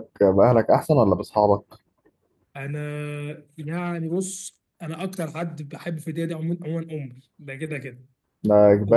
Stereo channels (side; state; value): both; identical; correlation 1.00